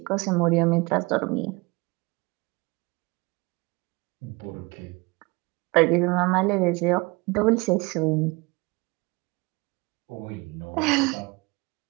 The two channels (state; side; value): quieter; left; 25.9 dB